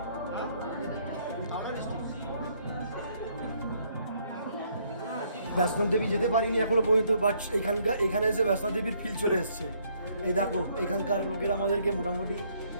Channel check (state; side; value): inverted; both; correlation -0.68